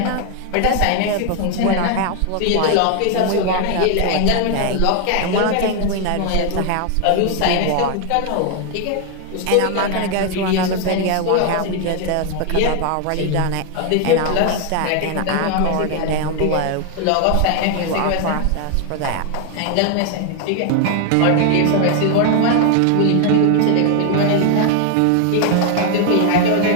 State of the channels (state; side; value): different; both; correlation 0.00